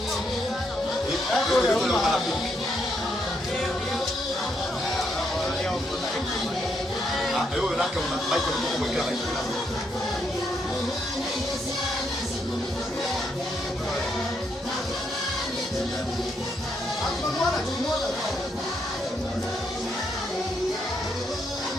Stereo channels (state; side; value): normal; both; correlation 0.77